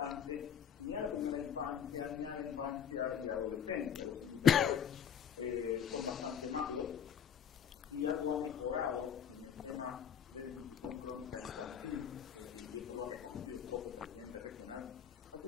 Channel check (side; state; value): right; quieter; 8.3 dB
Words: ni a la primera infancia, ni a la infancia y adolescencia. Los indicadores son bastante malos. Si algo ha mejorado en el tema de desnutrición crónica infantil, y eso lo ha reconocido el propio presidente regional, ha